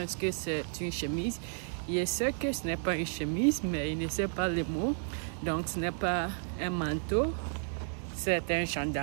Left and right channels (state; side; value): silent; left; 56 dB below the other